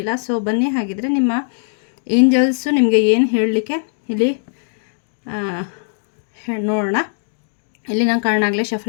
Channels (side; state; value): right; silent; digital silence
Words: ಸೊ ಬನ್ನಿ, ಹಾಗಿದ್ರೆ ನಿಮ್ಮ ಏಂಜಲ್ಸು ನಿಮಗೆ ಏನು ಹೇಳಲಿಕ್ಕೆ ಇಲ್ಲಿ ನೋಡೋಣ. ಇಲ್ಲಿ ನಾನು ಕಾರಣಾಗಲೇ